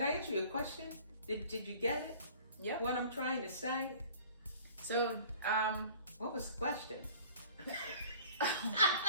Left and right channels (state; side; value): inverted; both; correlation -0.49